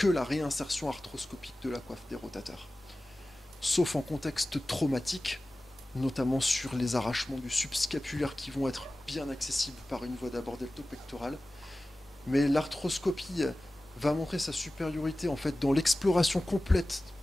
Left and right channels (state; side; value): normal; both; correlation 0.96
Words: la réinsertion arthroscopique de la coiffe des rotateurs. Sauf en contexte traumatique, notamment sur les arrachements du subscapulaire qui vont être bien accessibles par une voie d'abord deltopectorale. Mais l'arthroscopie va montrer sa supériorité en fait dans l'exploration complète